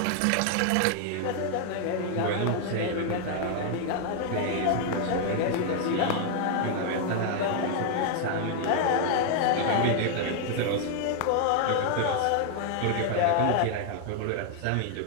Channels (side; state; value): both; different; correlation 0.00